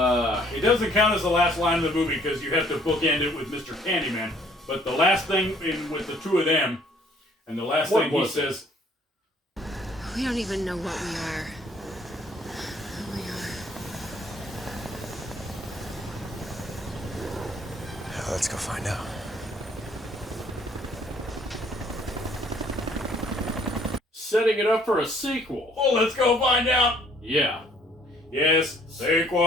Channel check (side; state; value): both; normal; correlation 0.61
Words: doesn't count as the last line of the movie because you have to bookend it with Mr. Candyman. But the last thing with the 2 of them, and the last thing he says, "We don't even know what we are. Who we are." Let's go find out. Setting it up for a sequel. "Oh, let's go find out." Yeah. Yes,